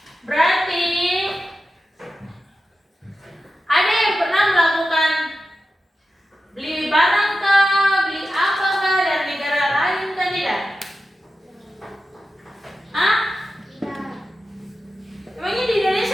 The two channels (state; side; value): normal; both; correlation 0.92